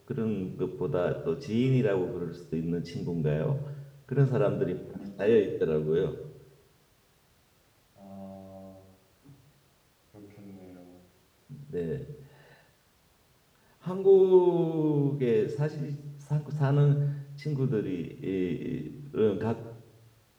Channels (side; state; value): both; identical; correlation 1.00